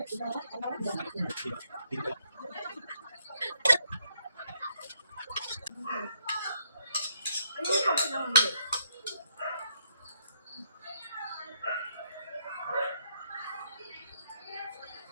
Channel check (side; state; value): both; inverted; correlation -0.74